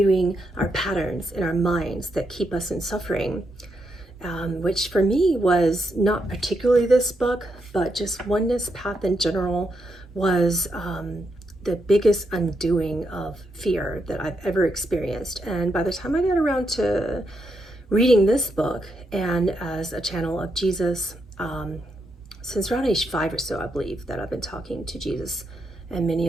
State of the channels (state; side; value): normal; both; correlation 0.81